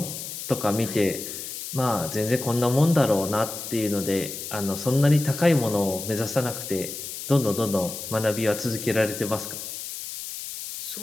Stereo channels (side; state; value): left; noise; hiss, 8 dB below the sound